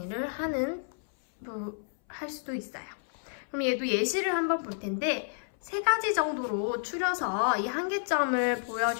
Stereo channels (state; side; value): silent; right; 58 dB below the other